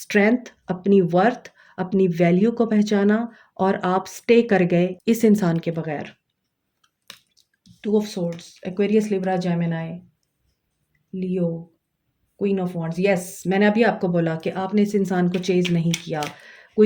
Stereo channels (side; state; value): both; identical; correlation 1.00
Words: अपनी वर्थ, अपनी वैल्यू को पहचाना, और आप स्टे कर गए इस इंसान के बगैर। 2 of swords, Aquarius, Libra, Gemini, Leo, queen of wands. Yes, मैंने अभी आपको बोला कि आपने इस इंसान को चेज़ नहीं किया।